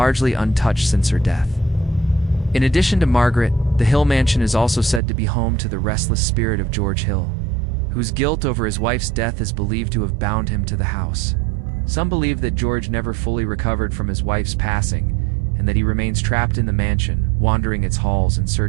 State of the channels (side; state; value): left; drops out; at 5.0 s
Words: untouched since her death. In addition to Margaret, the Hill Mansion is also said to be home to the restless spirit of George Hill, whose guilt over his wife's death is believed to have bound him to the house. Some believe that George never fully recovered from his wife's passing, and that he remains trapped in the mansion, wandering its halls in